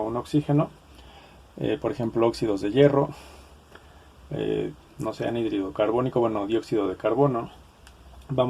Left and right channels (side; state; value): both; identical; correlation 1.00